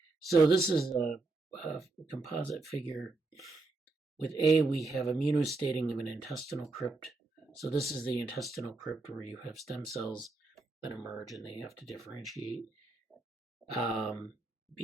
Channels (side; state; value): left; quieter; 3.4 dB